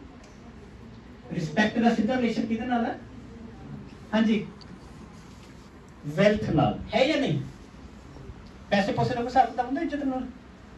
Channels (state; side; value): identical; both; correlation 1.00